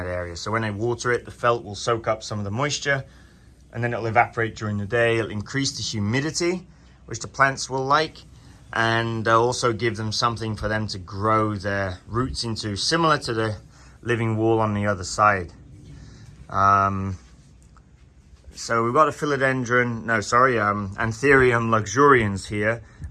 area. So when I water it, the felt will soak up some of the moisture, and then it'll evaporate during the day. It'll increase the humidity, which the plants will like, and also give them something for them to grow their roots into, similar to the living wall on the other side. So we've got a Anthurium luxurians here.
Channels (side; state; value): both; identical; correlation 1.00